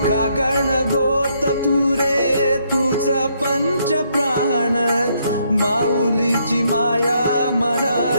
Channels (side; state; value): both; inverted; correlation -0.73